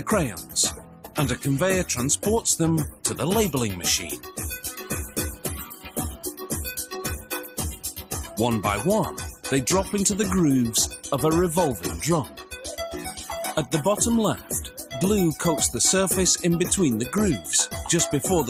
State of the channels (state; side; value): identical; both; correlation 1.00